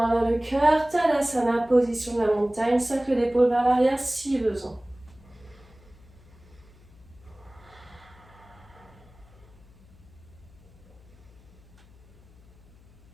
vers le cœur. Tadasana, position de la montagne. Cercle d'épaule vers l'arrière si besoin.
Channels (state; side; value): noise; left; hum, 25 dB below the sound